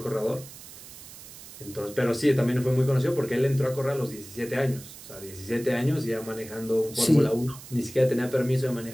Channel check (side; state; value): right; noise; hiss, 16 dB below the sound